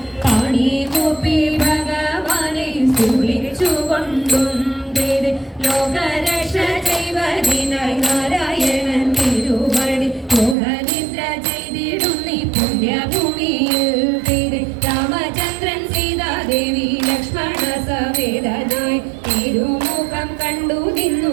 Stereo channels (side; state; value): left; drops out; at 10.6 s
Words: പാണി കൂപ്പി ഭഗവാനെ സ്തുതിച്ചുകൊണ്ടും ലോകരക്ഷ ചെയ്വതിനായി നാരായണൻ തിരുവടി മോഹനിദ്ര ചെയ്തിടുന്നി പുണ്യഭൂമിയിൽ രാമചന്ദ്രൻ സീതാദേവി ലക്ഷ്മണ സമേതനായി തിരുമുഖം കണ്ടു